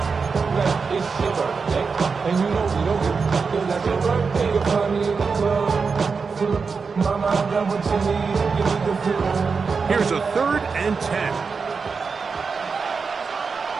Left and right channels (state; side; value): quieter; left; 5.1 dB